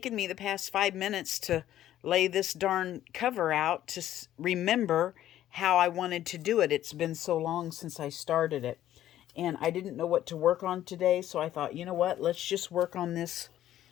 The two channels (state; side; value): quieter; right; 12.6 dB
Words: me the past 5 minutes to lay this darn cover out to remember how I wanted to do it. It's been so long since I started it. And I didn't know what to work on today, so I thought, you know what? Let's just work on this.